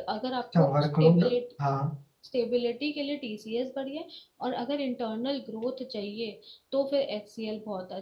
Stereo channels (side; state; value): both; identical; correlation 1.00